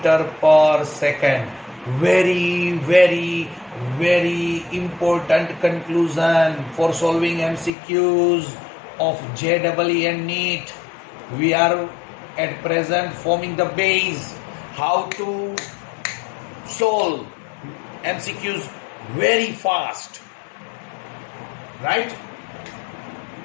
per second. Very important conclusion for solving MCQs of JEE and NEET. We are at present forming the base how to solve MCQs very fast, right?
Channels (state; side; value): drops out; right; at 7.7 s